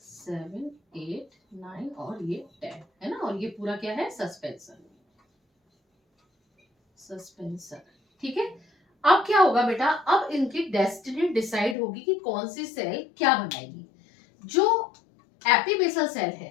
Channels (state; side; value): drops out; right; at 11.8 s